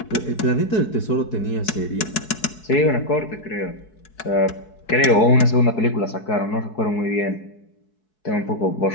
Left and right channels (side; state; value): right; late; 4.7 ms